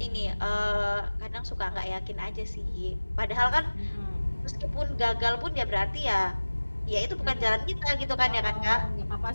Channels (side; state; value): both; inverted; correlation -1.00